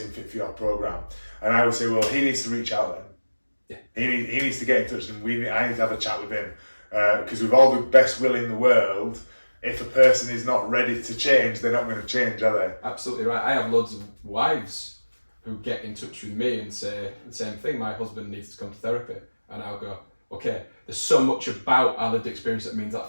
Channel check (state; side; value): inverted; both; correlation -1.00